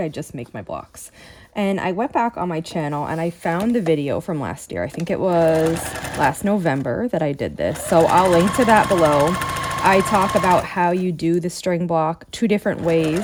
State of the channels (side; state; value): both; identical; correlation 1.00